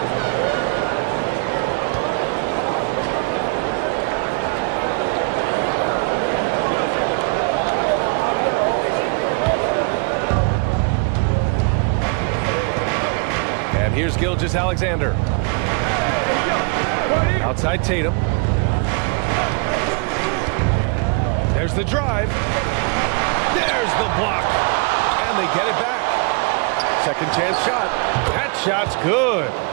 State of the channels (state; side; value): quieter; left; 33.7 dB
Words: And here's Gilgeous-Alexander. Outside Tatum. There's the drive. There's the block. And they get it back. Second chance shot. That shot's good.